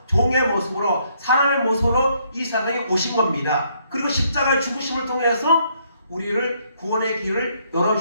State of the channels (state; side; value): inverted; both; correlation -0.70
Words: 종의 모습으로 사람의 모습으로 이 세상에 오신 겁니다. 그리고 십자가의 죽으심을 통해서 우리를 구원의 길을